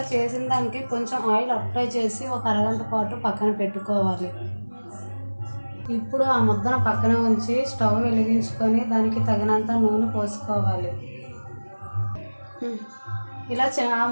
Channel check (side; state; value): both; inverted; correlation -1.00